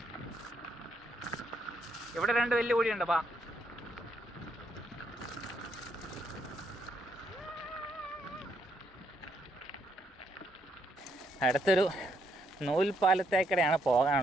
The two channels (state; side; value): normal; both; correlation 0.74